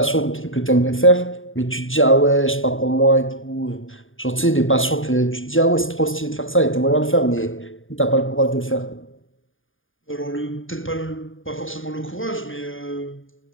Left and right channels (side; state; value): right; late; 0.58 ms